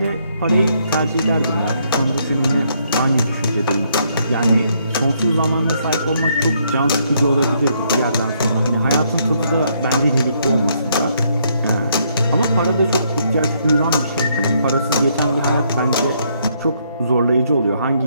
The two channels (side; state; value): both; inverted; correlation -0.72